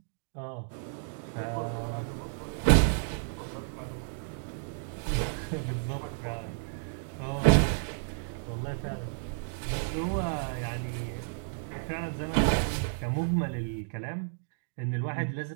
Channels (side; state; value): left; silent; digital silence